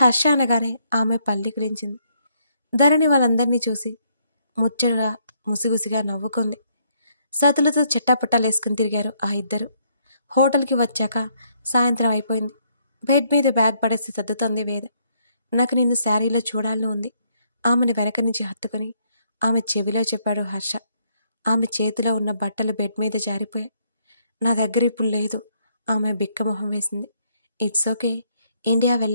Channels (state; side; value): inverted; both; correlation -0.71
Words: అనగానే ఆమె పల్లికిరించింది. ధరణి వాళ్ళందరినీ ముచ్చటగా ముసిగుసిగా నవ్వుకుంది. సతులతో చెట్టాపట్టాలేసుకుని తిరిగారు ఆ ఇద్దరు. హోటల్కి వచ్చాక సాయంత్రం అయిపోయింది. బెడ్ మీద బ్యాగ్ పడేసి సర్దుతోంది వేద. నాకు నిన్ను శారీలో చూడాలని ఉంది. ఆమెను వెనక నుంచి హత్తుకుని ఆమె చెవిలో చెప్పాడు హర్ష. ఆమె చేతిలో ఉన్న బట్టలు బెడ్ మీద జారిపోయాయి. నా దగ్గర ఇప్పుడు లేదు. ఆమె బిక్కమొహం వేసింది. ఇట్స్ ఓకే, ఇండియా